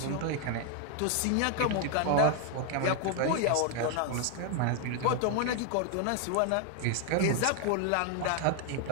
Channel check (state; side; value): different; both; correlation 0.01